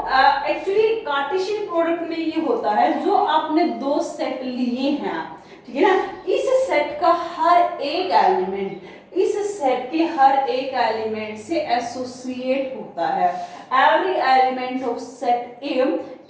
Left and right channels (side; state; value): both; identical; correlation 1.00